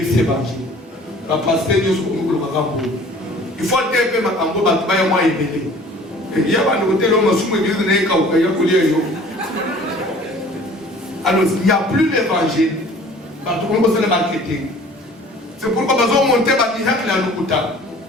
c'est évangile. La pasteur nous il faut dire que ma cambo va travailler moins élevé. Il y a un côté l'homme sous l'église n'est qu'au pays alors il n'y a plus l'évangile. Tout le monde le marketing. C'est pourquoi nous avons monté par miracle à l'Okuta.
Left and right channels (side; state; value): both; normal; correlation 0.49